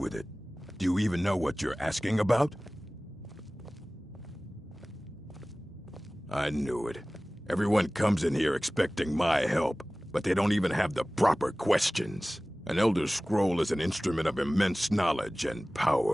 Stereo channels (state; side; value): normal; both; correlation 0.98